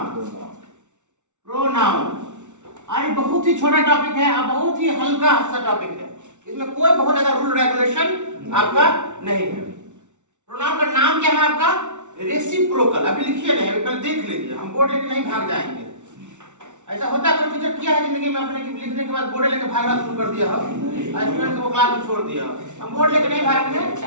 प्रोनाउन अरे बहुत ही छोटा टॉपिक है और बहुत ही हल्का सा टॉपिक है, इसमें कोई बहुत ज्यादा रूल रेगुलेशन आपका नहीं है। प्रोनाउन का नाम क्या है आपका? रेसिप्रोकल। अभी लिखिए नहीं, अभी पहले देख लीजिए, हम बोर्ड लेके नहीं भाग जाएंगे। ऐसा होता है कोई टीचर किया है जिंदगी में अपने की लिखने के बाद बोर्ड लेके भागना शुरू कर दिया हो, स्टूडेंट को क्लास में छोड़ दिया। हम बोर्ड लेके नहीं भागेंगे,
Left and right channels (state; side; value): late; left; 0.85 ms